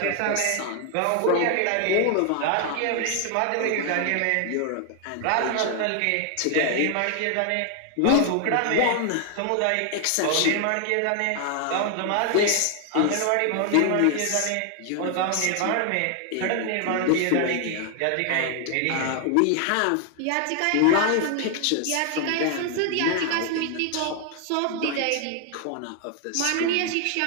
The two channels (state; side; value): different; both; correlation 0.00